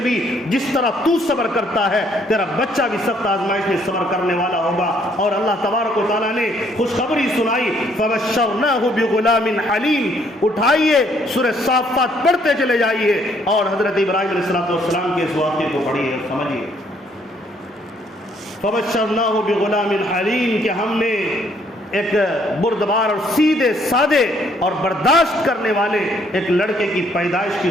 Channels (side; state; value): both; normal; correlation 0.66